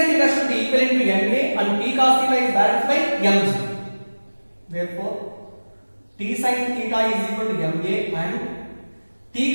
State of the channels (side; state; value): both; inverted; correlation -1.00